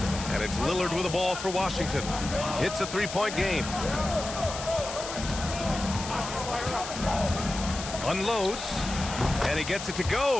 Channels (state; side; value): noise; left; hiss, 9 dB below the sound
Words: And it's Lillard with the ball for Washington. It's a three-point game. Unloads, and he gets it to